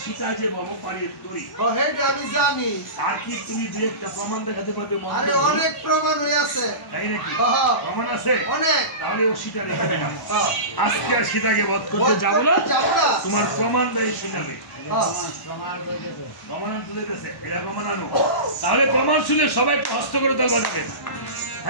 সীতা যে ভবপালের তরি আমি জানি। তার কি তুমি দুই একটা প্রমাণ দেখাতে পারবে? আরে অনেক প্রমাণ হয়ে আছে। তাই নাকি? প্রমাণ আছে অনেক। তাহলে ও সীতা রেখে দিলাম, আজকে আর সীতাকে বধ করতে যাবো না, তোমার প্রমাণ দেয় শুনাবে। প্রমাণ তুলে দিয়েছে, এটা প্রমাণ আনো। তাহলে প্রমাণ শুনে সবাই হস্ত করে তাল বাজাবেন।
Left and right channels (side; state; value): right; late; 1.1 ms